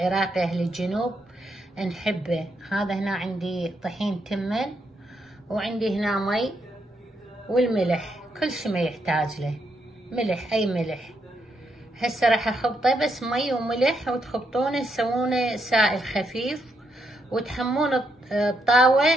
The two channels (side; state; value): both; normal; correlation 0.79